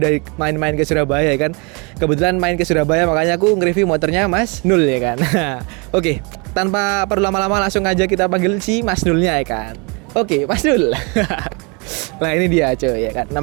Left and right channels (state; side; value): quieter; left; 30.8 dB